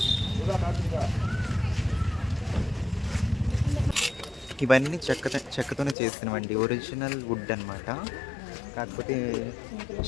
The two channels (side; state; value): right; drops out; at 6.0 s